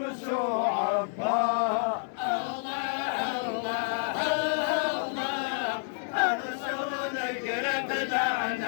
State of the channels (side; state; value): right; silent; 58 dB below the other